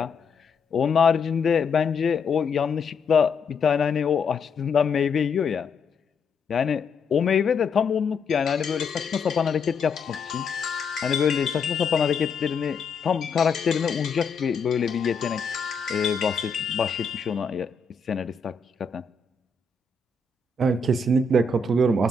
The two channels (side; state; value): right; quieter; 4.5 dB